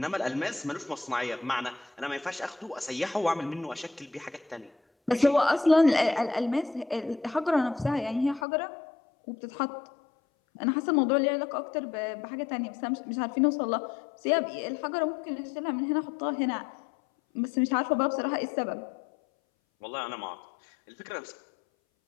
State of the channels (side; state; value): right; drops out; at 8.5 s